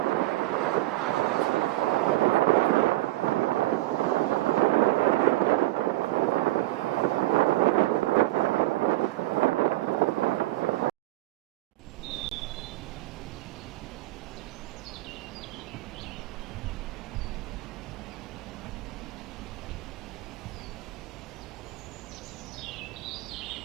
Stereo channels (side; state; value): left; quieter; 17.8 dB